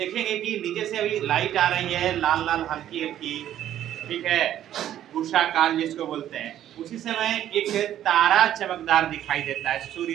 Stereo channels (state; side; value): quieter; left; 11.6 dB